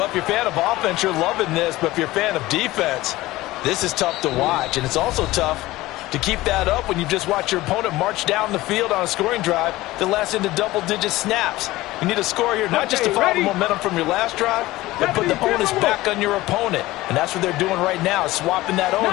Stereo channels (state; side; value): quieter; right; 18.0 dB